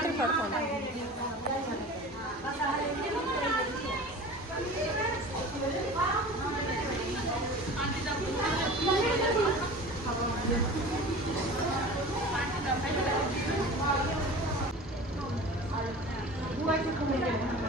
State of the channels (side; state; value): both; normal; correlation 0.38